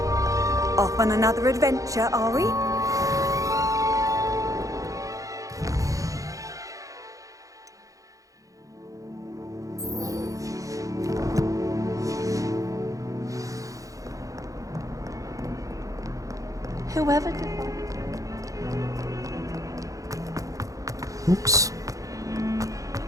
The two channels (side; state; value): left; late; 0.16 ms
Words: Off on another adventure, are we? Whoever Oops.